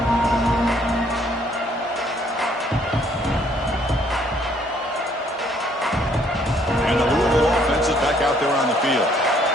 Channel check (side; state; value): both; normal; correlation 0.64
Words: And the Louisville offense is back out there on the field.